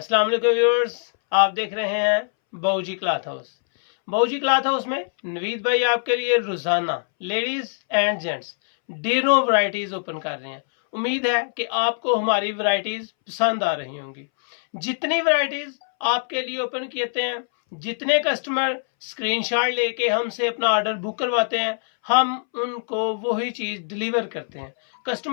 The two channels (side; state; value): right; silent; 63 dB below the other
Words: वालेकुम व्यूअर्स, आप देख रहे हैं बाऊजी क्लॉथ हाउस। बाऊजी क्लॉथ हाउस में नवीद भाई आपके लिए रोजाना लेडीज एंड जेंट्स ढेरों वैरायटीज ओपन कर रहे हैं। उम्मीद है कि आपको हमारी वैरायटीज पसंद आ रही होंगी। जितनी वैरायटीज आपके लिए ओपन किए हैं, जितने कस्टमर स्क्रीनशॉट लेके हमसे अपना ऑर्डर बुक करवाते हैं, हम उनको वही चीज डिलीवर करते हैं।